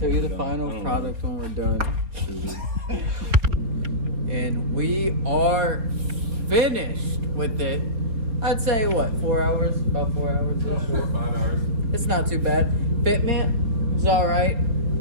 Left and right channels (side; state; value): left; late; 4.1 ms